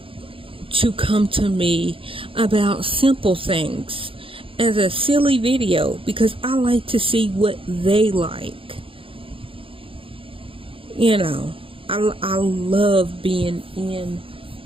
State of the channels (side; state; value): left; late; 0.26 ms